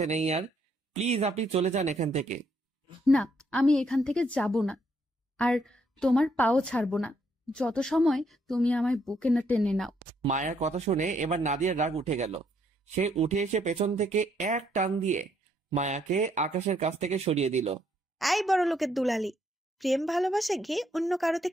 নেই আর। প্লিজ আপনি চলে যান এখান থেকে। না, আমি এখান থেকে যাব না। আর তোমার পাও ছাড়বো না যত সময় তুমি আমায় বুকে না টেনে নাও। মায়ার কথা শুনে এবার নাদিয়ার রাগ উঠে গেল। সে উঠে এসে পেছন থেকে এক টান দিয়ে মায়াকে আকাশের কাছ থেকে সরিয়ে দিল। আই বড় লোকের দুলালি, প্রেম ভালোবাসা গিয়ে অন্য কারো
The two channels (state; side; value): normal; both; correlation 0.71